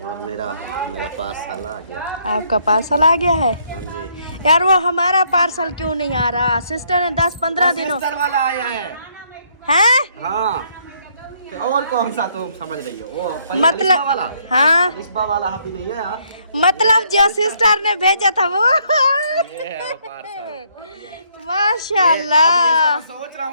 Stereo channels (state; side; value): inverted; both; correlation -0.69